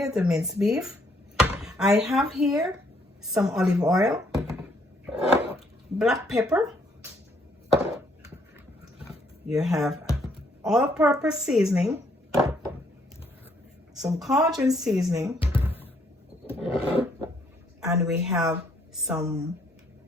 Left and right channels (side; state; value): both; normal; correlation 0.68